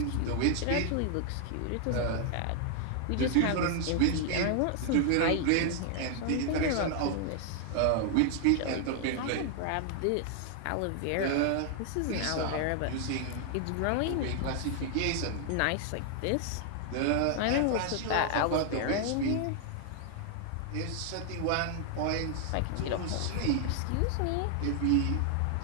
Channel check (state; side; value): different; both; correlation 0.00